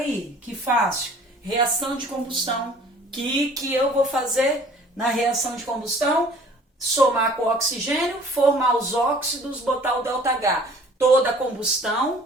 aí, que fácil. Reação de combustão. Que eu vou fazer na reação de combustão? Somar com o oxigênio, formar os óxidos, botar o ΔH. Toda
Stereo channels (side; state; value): both; normal; correlation 0.52